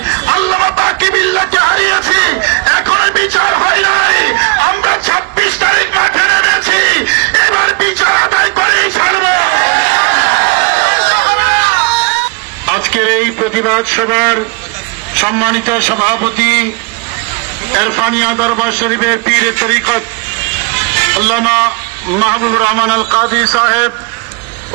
আল্লামা বাকিবিল্লাহকে হারিয়েছি, এখনো বিচার হয় নাই। আমরা 26 তারিখ মাঠে নেমেছি, এবার বিচার আদায় করেই ছাড়ব। আজকের এই প্রতিবাদ সভার সম্মানিত সভাপতি এরফানিয়া দরবার শরীফের পীর তরিকত আল্লামা মাহবুবুর রহমান আল কাদি সাহেব,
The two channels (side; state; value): left; quieter; 28.7 dB